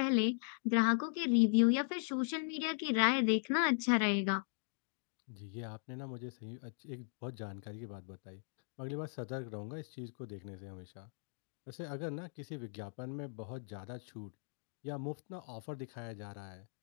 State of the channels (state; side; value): silent; right; digital silence